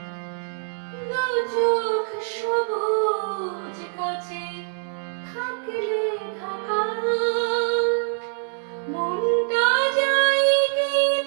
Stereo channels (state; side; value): silent; left; digital silence